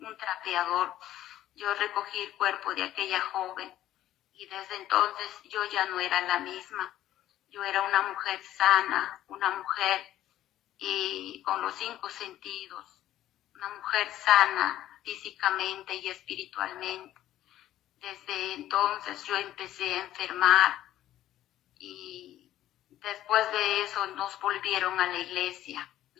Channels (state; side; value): quieter; right; 13.2 dB